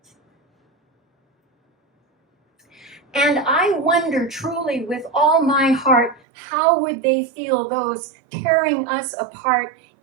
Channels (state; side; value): drops out; left; at 6.2 s